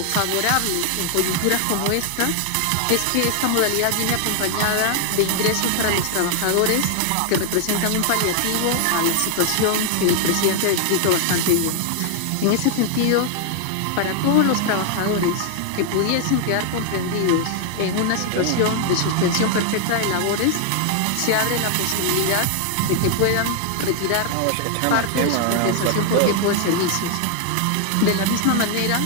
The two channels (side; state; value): both; different; correlation 0.00